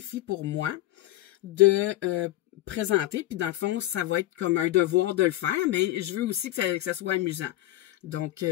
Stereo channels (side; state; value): right; quieter; 15.5 dB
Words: pour moi de présenter. Puis dans le fond, ça va être comme un devoir de le faire, mais je veux aussi que ça soit amusant. Donc,